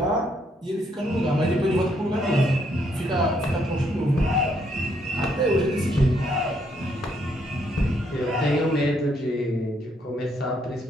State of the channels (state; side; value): normal; both; correlation 0.72